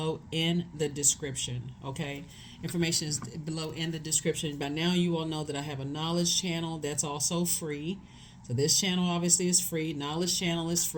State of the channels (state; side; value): identical; both; correlation 1.00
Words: in the description. Okay? Information is below in the description. By now, you all know that I have a knowledge channel that's also free. So this channel obviously is free. Knowledge channel is